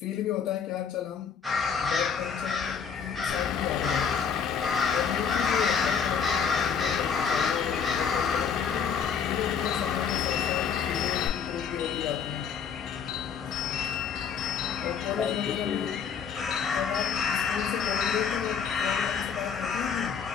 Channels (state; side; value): quieter; right; 6.8 dB